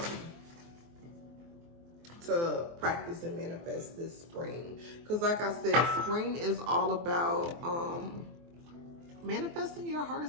to practice and manifest this spring. Because like I said, spring is all about manifesting your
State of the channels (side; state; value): left; late; 24 ms